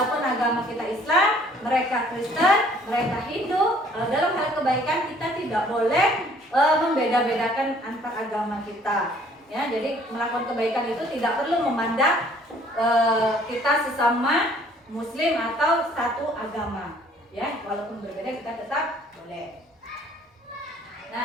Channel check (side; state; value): both; normal; correlation 0.58